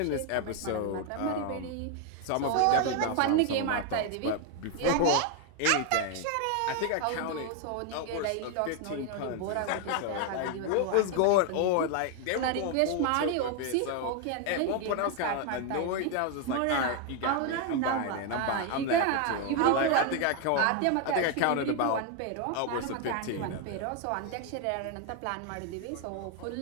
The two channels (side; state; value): both; different; correlation 0.01